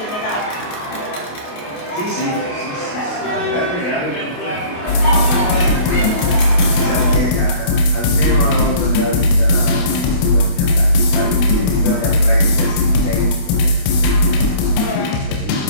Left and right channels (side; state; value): right; late; 28 ms